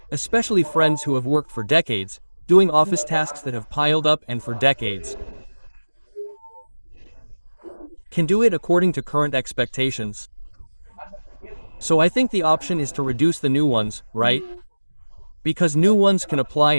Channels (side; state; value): both; inverted; correlation -1.00